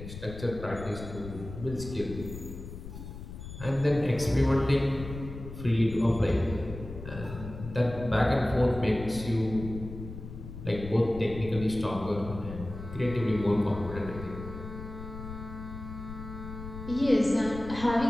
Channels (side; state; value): left; noise; rumble, 11 dB below the sound